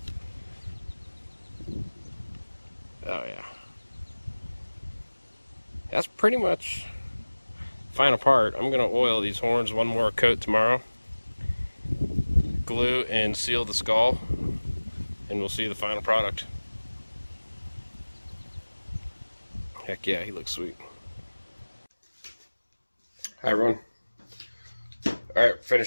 Oh yeah. That's pretty much final part. I'm gonna oil these horns one more coat tomorrow. Glue and seal the skull, and we'll see the final product. Heck yeah, he looks sweet. Hi everyone. Alright,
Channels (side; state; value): both; inverted; correlation -1.00